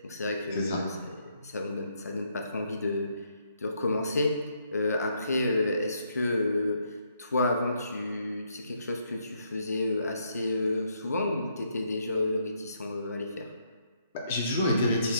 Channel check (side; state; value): both; inverted; correlation -0.74